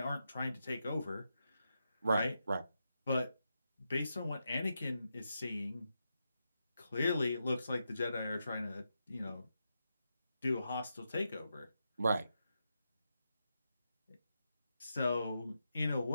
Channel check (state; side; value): inverted; both; correlation -0.86